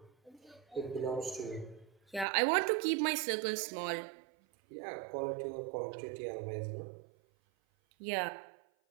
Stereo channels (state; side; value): drops out; left; at 2.2 s